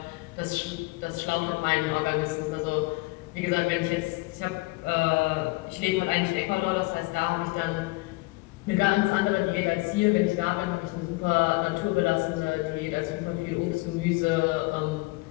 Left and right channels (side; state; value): right; quieter; 24.3 dB